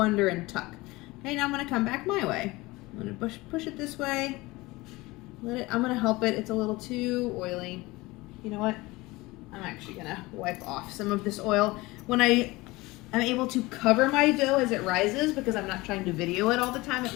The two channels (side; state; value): right; quieter; 21.4 dB